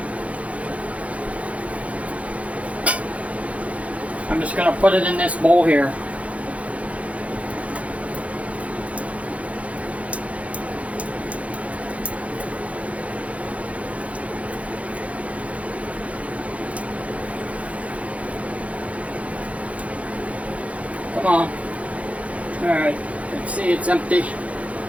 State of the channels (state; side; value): late; left; 0.065 ms